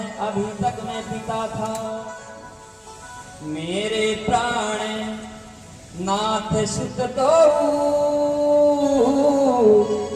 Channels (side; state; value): both; identical; correlation 1.00